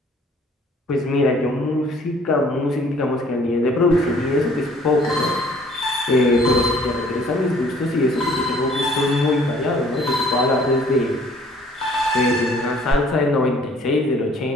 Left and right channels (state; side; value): normal; both; correlation 0.57